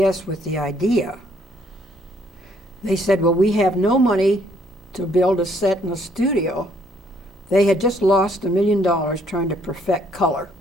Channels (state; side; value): normal; both; correlation 0.67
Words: with the idea, they said, well, we have no money to build a set in a studio. They had just lost $1 million trying to perfect color.